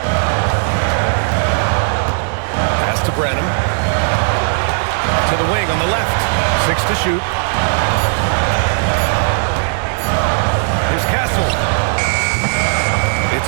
Pass to Branham. To the wing on the left. 6 to shoot. Here's Castle. It's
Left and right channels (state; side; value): silent; left; 63 dB below the other